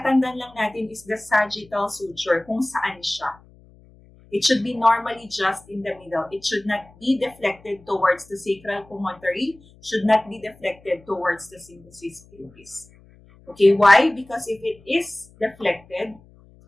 lang natin is the sagittal suture, kung saan siya. It should be normally just in the middle. It should not be deflected towards the sacral promontory, should not be deflected towards the symphysis pubis. Okay, why? Because if it is deflected,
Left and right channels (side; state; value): left; noise; hum, 26 dB below the sound